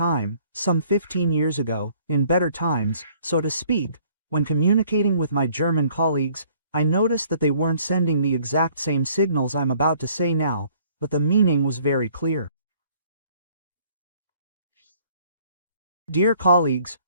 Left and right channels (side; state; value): both; inverted; correlation -0.59